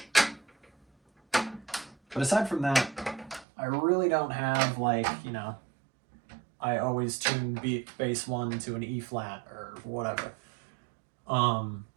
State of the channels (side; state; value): left; drops out; at 3.5 s